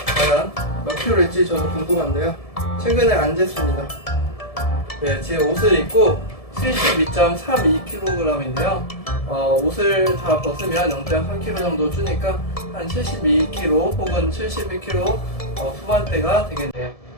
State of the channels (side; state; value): right; late; 1.7 ms